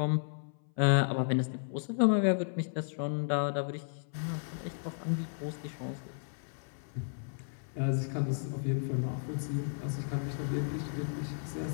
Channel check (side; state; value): right; silent; 55 dB below the other